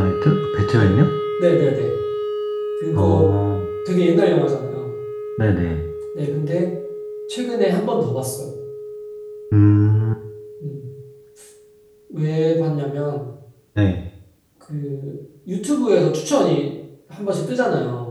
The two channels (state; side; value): identical; both; correlation 1.00